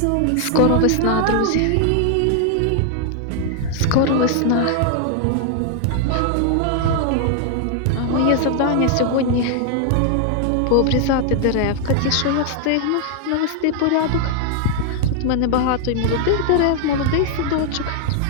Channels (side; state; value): both; different; correlation 0.00